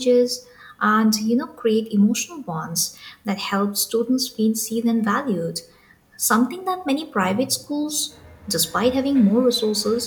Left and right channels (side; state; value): both; identical; correlation 1.00